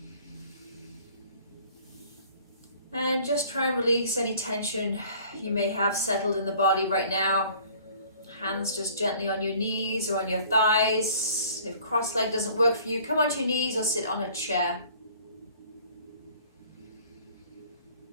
And just try and release any tension you may have settled in the body right now. Hands just gently on your knees or on your thighs. If cross-leg doesn't work for you, come onto your knees or sit on a chair.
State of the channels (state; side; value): inverted; both; correlation -0.52